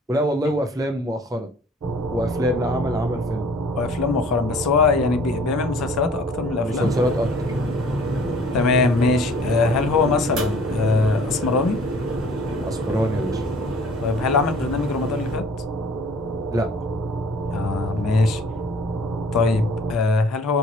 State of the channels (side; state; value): both; normal; correlation 0.51